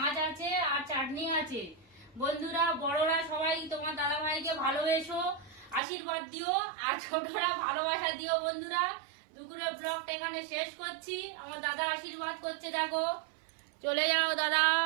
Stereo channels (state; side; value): drops out; left; at 5.8 s